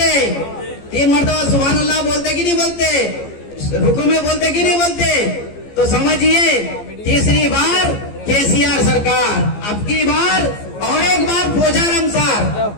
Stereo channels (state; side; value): late; right; 15 ms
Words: 3 मरतबा सुभान अल्लाह बोलते कि नहीं बोलते? रुकू में बोलते कि नहीं बोलते? तो समझिए, तीसरी बार केसीआर सरकार, अब की बार और एक बार पोचारम सार,